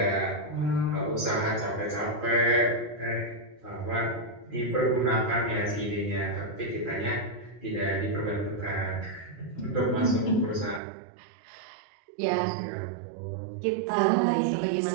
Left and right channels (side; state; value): left; drops out; at 10.8 s